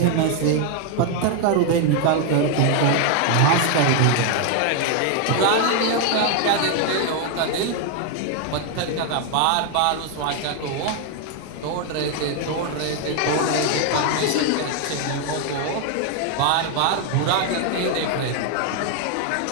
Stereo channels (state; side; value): different; both; correlation 0.01